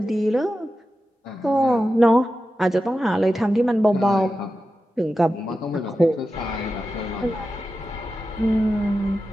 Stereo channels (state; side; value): normal; both; correlation 0.92